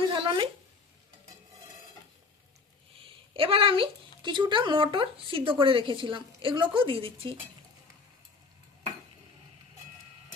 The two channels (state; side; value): quieter; right; 4.4 dB